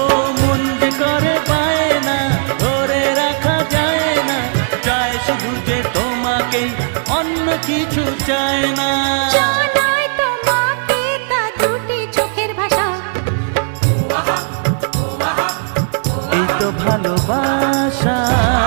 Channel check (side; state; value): left; silent; 64 dB below the other